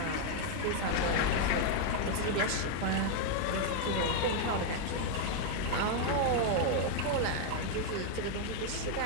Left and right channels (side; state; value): both; different; correlation 0.00